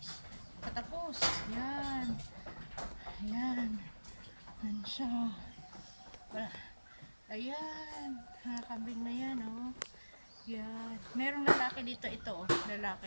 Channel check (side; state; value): both; inverted; correlation -1.00